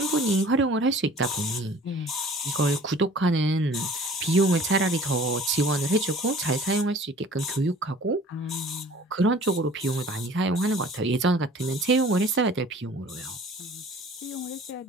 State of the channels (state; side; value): normal; both; correlation 0.48